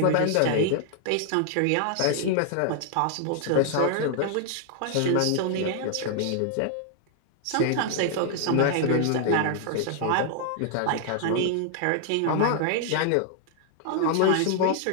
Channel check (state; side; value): different; both; correlation 0.00